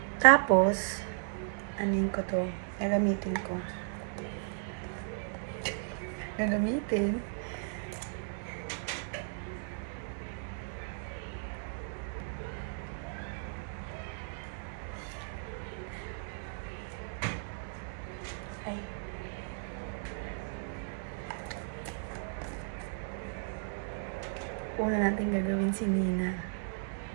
Tapos, anin ko to? Gagamitin ko. Gagamitin. Ay. Una natin gagawin si Nina.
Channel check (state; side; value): silent; left; digital silence